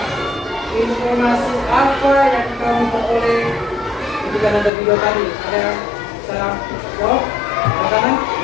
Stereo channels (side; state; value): right; drops out; at 4.7 s